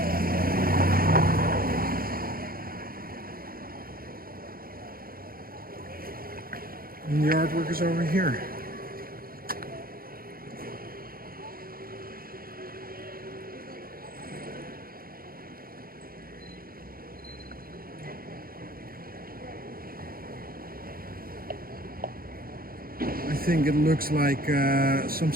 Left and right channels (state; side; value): late; left; 0.42 ms